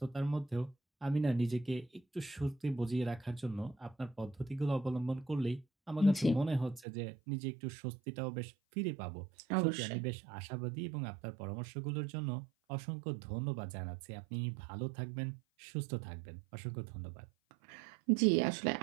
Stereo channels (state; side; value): drops out; left; at 6.9 s